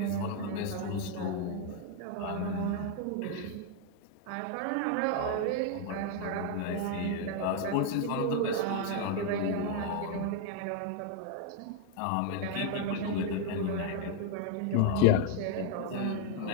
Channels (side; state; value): both; different; correlation 0.00